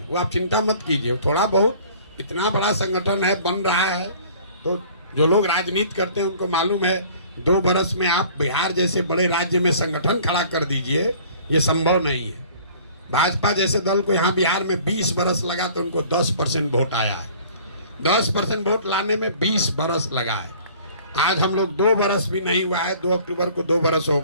वो आप चिंता मत कीजिए। थोड़ा बहुत, इतना बड़ा संगठन है, बन रहा है, तो जो लोग राजनीति करते हैं उनको मालूम है 2 बरस में आप बिहार जैसे बड़े राज्य में संगठन खड़ा कर दीजिए, ये संभव नहीं है। भाजपा जैसे दल को यहाँ बिहार में 20 बरस लगा तो उनको 10% वोट आया है। 10% वोट लाने में 20 बरस लगा है। आज हम लोग 2 बरस भी नहीं हुआ है, 2 अक्टूबर को 2 बरस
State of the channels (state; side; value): inverted; both; correlation -0.51